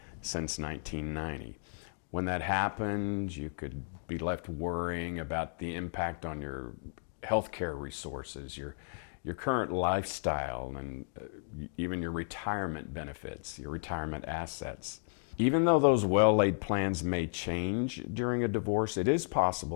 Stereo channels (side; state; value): right; silent; digital silence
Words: since 1990. When that happens, you could be left worrying about the impact on your healthcare resources, your current lifestyle, and even your retirement benefits, your retirement assets. Even though those well-laid plans may change during a divorce, it is